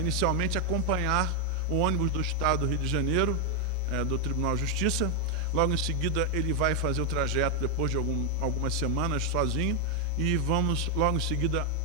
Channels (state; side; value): normal; both; correlation 0.01